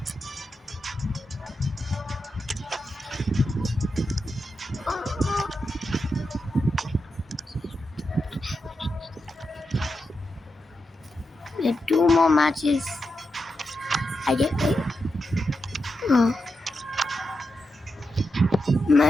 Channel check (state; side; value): normal; both; correlation 0.87